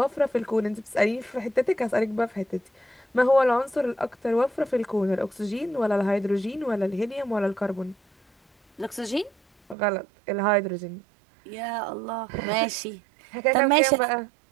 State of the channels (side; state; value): left; drops out; at 9.8 s